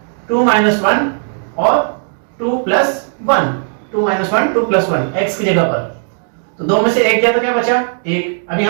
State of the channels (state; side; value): silent; left; digital silence